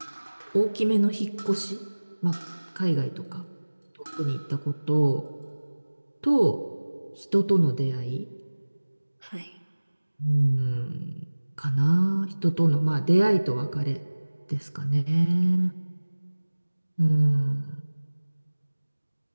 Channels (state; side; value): inverted; both; correlation -1.00